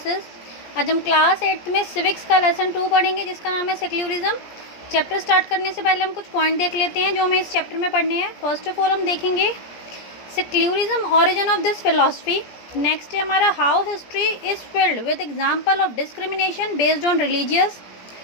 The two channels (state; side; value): late; right; 17 ms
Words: आज हम क्लास 8 में सिविक्स का लेसन 2 पढ़ेंगे जिसका नाम है सेक्युलरिज्म। चैप्टर स्टार्ट करने से पहले हम कुछ पॉइंट देख लेते हैं जो हमें इस चैप्टर में पढ़ने हैं। फर्स्ट ऑफ ऑल हम देखेंगे secularism, origin of this philosophy. Next है हमारा how history is filled with example of discrimination based on religious.